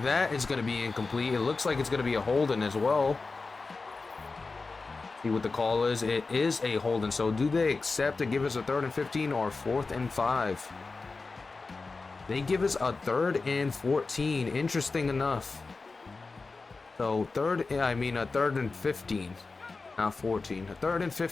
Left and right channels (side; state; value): right; quieter; 4.0 dB